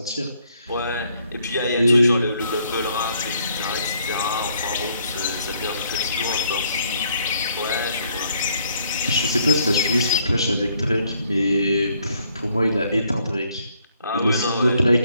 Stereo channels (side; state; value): both; inverted; correlation -0.68